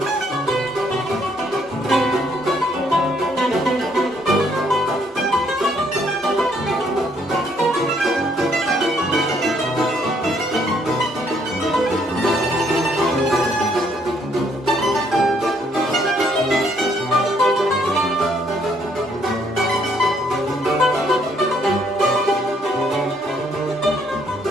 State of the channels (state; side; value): normal; both; correlation 0.68